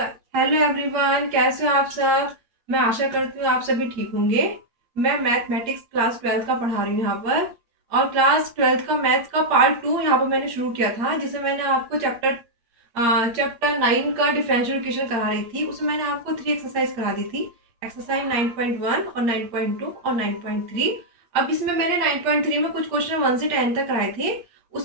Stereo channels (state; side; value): late; left; 8.6 ms